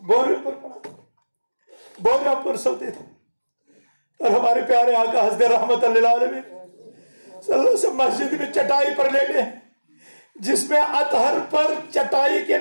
بوریوں پر پڑا، بوریاں پر سوتے تھے، اور ہمارے پیارے آقا حضرت رحمت اللہ علیہ صلی اللہ علیہ وسلم مسجد میں چٹائی پر لیٹے ہیں، جس میں اطہر پر چٹائی کے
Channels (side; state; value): both; inverted; correlation -1.00